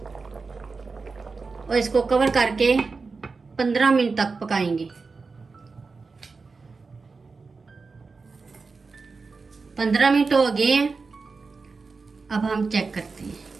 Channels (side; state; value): left; quieter; 4.4 dB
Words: और इसको कवर करके 15 मिनट तक पकाएंगे। 15 मिनट हो गए हैं। अब हम चेक करते हैं।